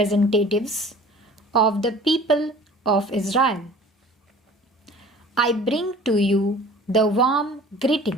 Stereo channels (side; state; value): both; normal; correlation 0.46